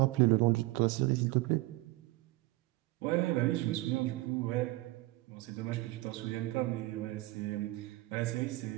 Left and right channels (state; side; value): quieter; left; 20.1 dB